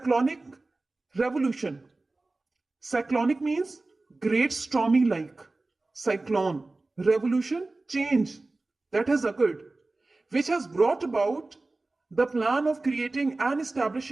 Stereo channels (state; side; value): quieter; left; 3.2 dB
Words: revolution. Cyclonic means great stormy like. Cyclone, revolution, change that has occurred, which has brought about the plan of creating and